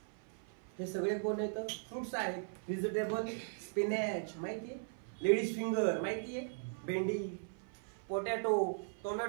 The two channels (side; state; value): left; silent; 52 dB below the other